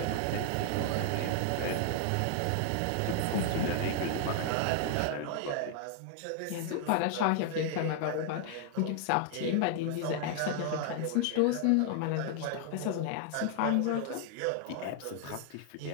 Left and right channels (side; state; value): both; different; correlation 0.00